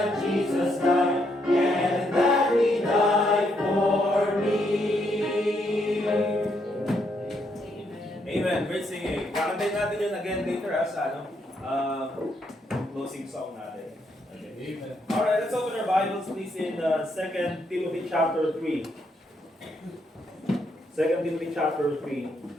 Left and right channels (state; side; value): normal; both; correlation 0.76